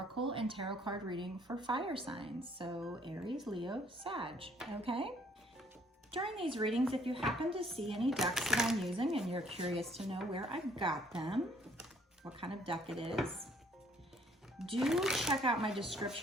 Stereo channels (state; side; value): normal; both; correlation 0.63